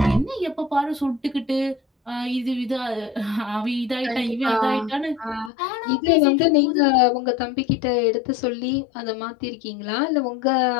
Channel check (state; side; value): drops out; right; at 5.5 s